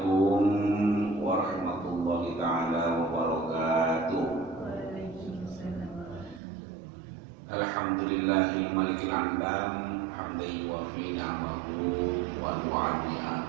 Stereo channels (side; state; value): left; drops out; at 6.4 s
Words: warahmatullahi ta'ala wabarakatuh. Alhamdulillahil malikil alam, hamdan yuwafi ni'amahu wa yu'addiha.